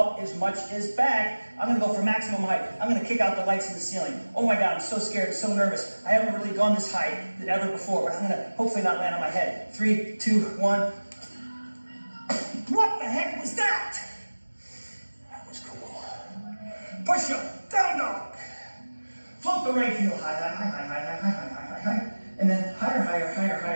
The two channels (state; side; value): inverted; both; correlation -1.00